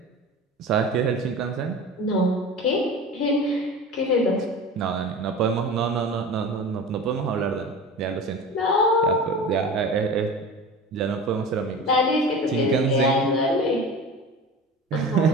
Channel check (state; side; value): normal; both; correlation 0.33